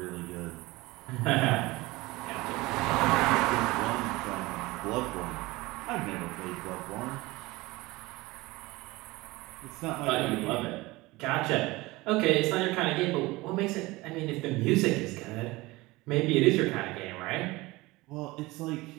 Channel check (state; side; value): quieter; left; 21.1 dB